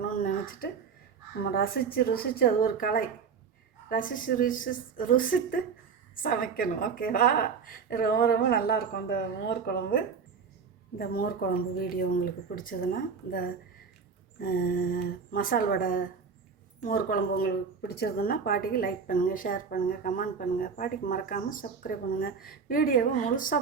நினச்சிட்டு நம்ம ரசித்து அது ஒரு கலை, ருசித்து சமைக்கணும். ஓகேவா? ரொம்ப ரொம்ப நல்லாயிருக்கும் இந்த மோர் குழம்பு. இந்த மோர் குழம்பு வீடியோ உங்களுக்கு பிடிச்சதுன்னா, இந்த மசால் வடை மோர் குழம்பு உங்களுக்கு பிடிச்சிருதுன்னா பாட்டிக்கு லைக் பண்ணுங்கள், ஷேர் பண்ணுங்கள், கமெண்ட் பண்ணுங்கள். பாட்டிக்கு மறக்காமல் சப்ஸ்கிரைப் பண்ணுங்கள். வீடியோவை முழுசாக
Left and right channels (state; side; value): quieter; left; 5.8 dB